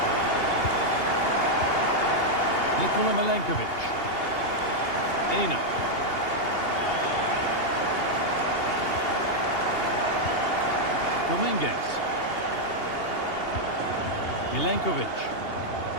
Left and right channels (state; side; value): late; right; 2.8 ms